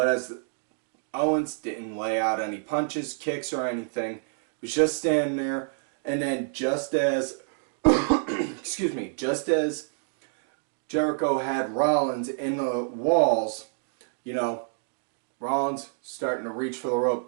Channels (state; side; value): silent; left; digital silence